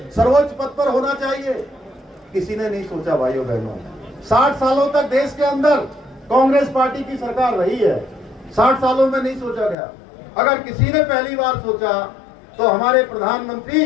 सर्वोच्च पद पर होना चाहिए? किसी ने नहीं सोचा। भाइयों बहनों, 60 सालों तक देश के अंदर कांग्रेस पार्टी की सरकार रही है, 60 सालों में नहीं सोचा गया। अगर किसी ने पहली बार सोचा तो हमारे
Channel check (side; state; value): right; drops out; at 9.8 s